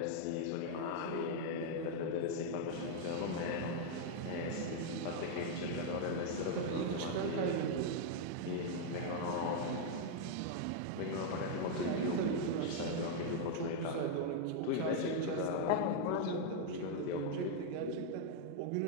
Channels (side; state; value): both; different; correlation 0.00